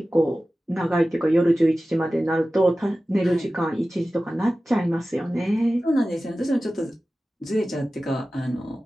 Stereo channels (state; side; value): normal; both; correlation 0.96